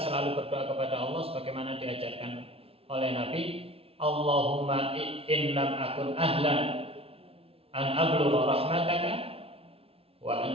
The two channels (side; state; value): left; late; 0.28 ms